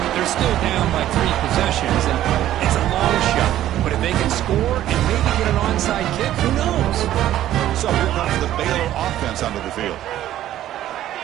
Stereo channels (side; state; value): left; quieter; 12.9 dB